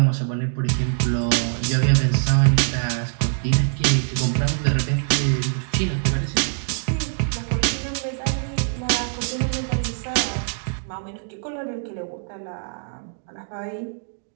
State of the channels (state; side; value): silent; left; digital silence